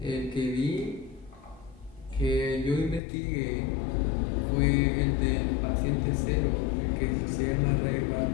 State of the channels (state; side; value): drops out; right; at 3.0 s